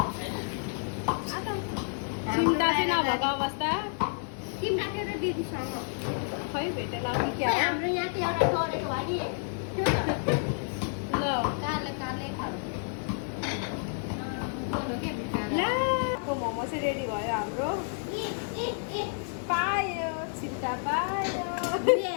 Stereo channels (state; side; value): silent; right; 58 dB below the other